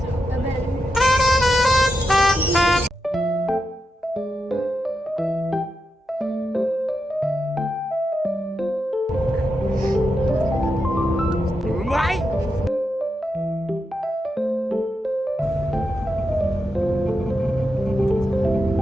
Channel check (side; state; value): both; normal; correlation 0.87